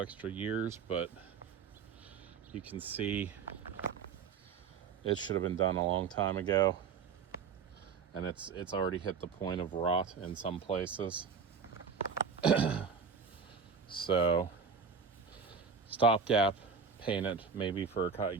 years, but you can see it should have been done a long time ago. And it's already hit the point of rot in some places. So stopgap, paint it maybe for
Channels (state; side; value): quieter; left; 5.9 dB